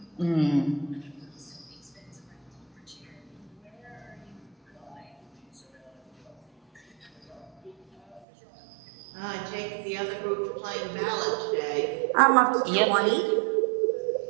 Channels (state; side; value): drops out; left; at 8.2 s